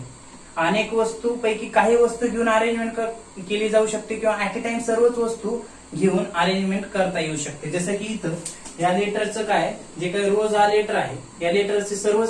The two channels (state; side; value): identical; both; correlation 1.00